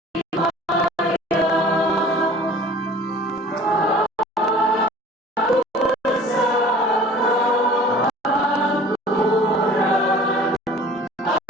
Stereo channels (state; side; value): normal; both; correlation 0.47